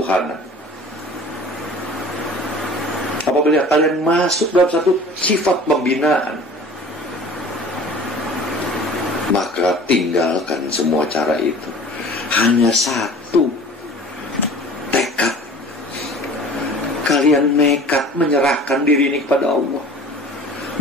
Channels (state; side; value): normal; both; correlation 0.44